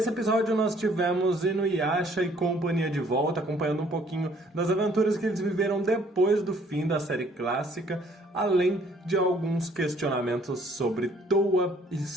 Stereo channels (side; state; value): both; normal; correlation 0.61